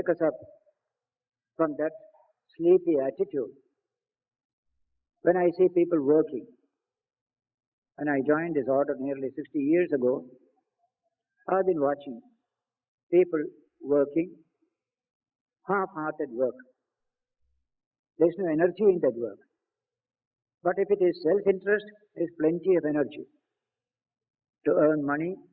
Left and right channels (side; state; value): both; identical; correlation 1.00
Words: us up from that sleepy attitude. When I see people working, and I joined this order nearly 60 years ago, I've been watching people working, half-hearted work. There's no energy in that work. But if it is self-interest, there's plenty of energy to earn money,